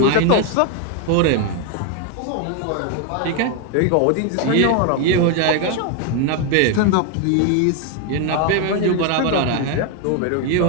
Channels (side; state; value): both; different; correlation 0.01